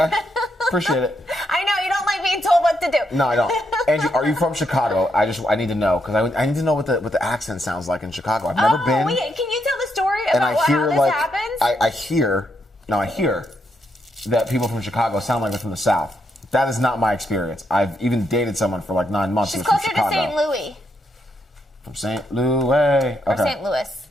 Appreciate it. I know. You don't like being told what to do. No, I don't. Angie, are you from Chicago? I need to know, because I need to know what the accent sounds like in Chicago. I've never been. Wait, can you tell the story And about how this happens? I hear that people from Chicago sound like they're from the South. That is not my experience. I've even dated someone for like 9 months She's who's from closer Chicago. to St. Louis. From St. Louis. Okay. Or St. Louis.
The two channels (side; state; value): both; normal; correlation 0.79